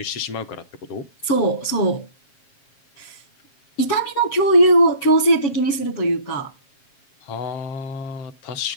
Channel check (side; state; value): right; late; 7.4 ms